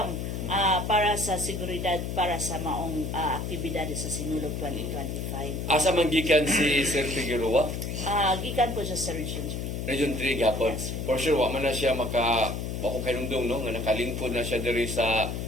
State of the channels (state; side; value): noise; left; hum, 4 dB below the sound